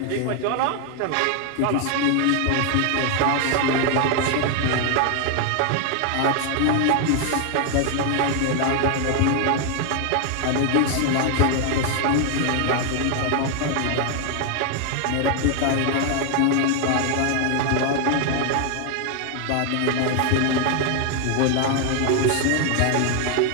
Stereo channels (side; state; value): both; different; correlation 0.00